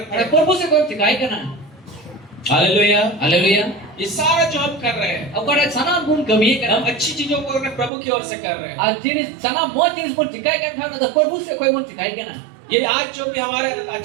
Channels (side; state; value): left; drops out; at 7.9 s